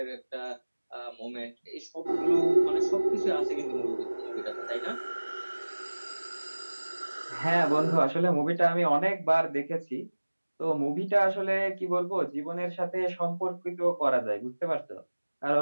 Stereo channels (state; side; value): inverted; both; correlation -1.00